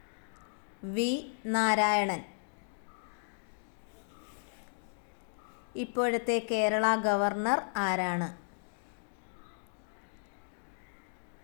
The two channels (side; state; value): right; silent; digital silence